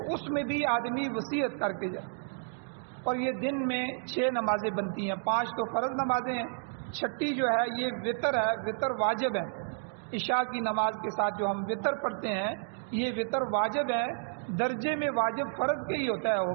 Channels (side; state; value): left; silent; digital silence